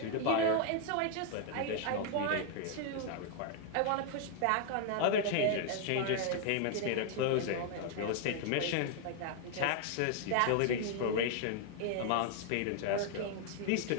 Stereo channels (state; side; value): different; both; correlation 0.00